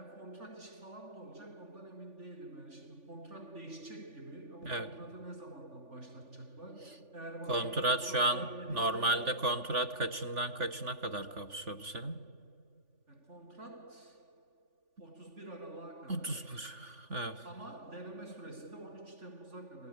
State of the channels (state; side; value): late; left; 3.5 ms